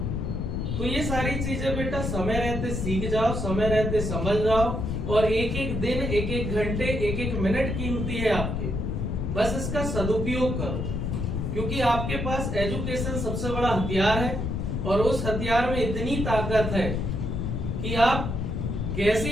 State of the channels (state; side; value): noise; left; rumble, 2 dB below the sound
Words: तो ये सारी चीजें बेटा समय रहते सीख जाओ, समय रहते समझ जाओ, और एक एक दिन, एक एक घंटे, एक एक मिनट कीमती है आपके, बस इसका सदुपयोग करो, क्योंकि आपके पास एजुकेशन सबसे बड़ा हथियार है, और उस हथियार में इतनी ताकत है कि आप